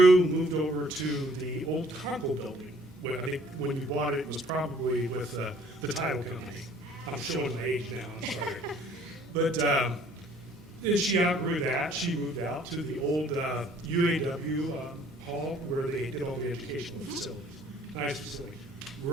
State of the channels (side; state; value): both; normal; correlation 0.58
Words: moved over to the old Conkle building. Well, I think when you bought it, it was probably with the title company. I'm showing my age now, I'm sorry. But then she outgrew that. She moved out to the old UAW hall where they did all the educational facilities. Nice facility.